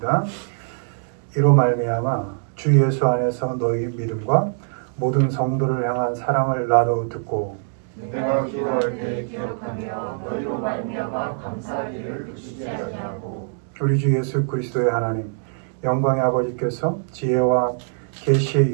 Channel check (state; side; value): silent; left; 64 dB below the other